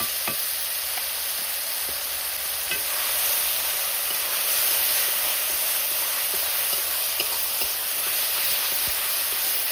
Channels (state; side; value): identical; both; correlation 1.00